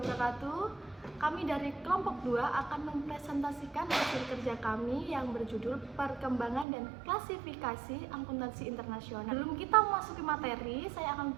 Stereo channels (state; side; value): drops out; left; at 6.7 s